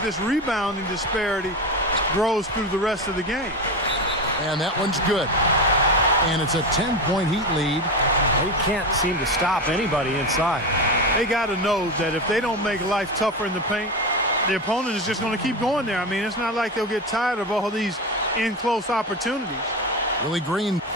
this rebounding disparity grows through the rest of the game. And that one's good. And it's a 10-point Heat lead. They can't seem to stop anybody inside. They got to know that if they don't make life tougher in the paint, the opponent is just going to keep going there. I mean, it's not like they'll get tired of all these in-close opportunities. Willie Green.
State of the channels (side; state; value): both; normal; correlation 0.20